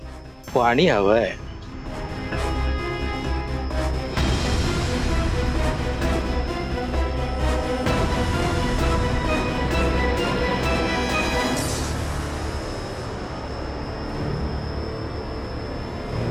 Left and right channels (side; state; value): both; identical; correlation 1.00